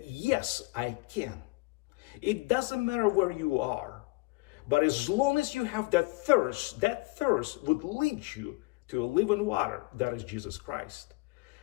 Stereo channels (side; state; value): right; quieter; 25.0 dB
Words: yes, I can. It doesn't matter where you are. But as long as you have that thirst would lead you to a living water. That is Jesus Christ.